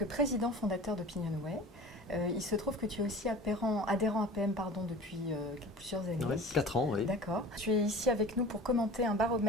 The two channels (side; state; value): both; normal; correlation 0.40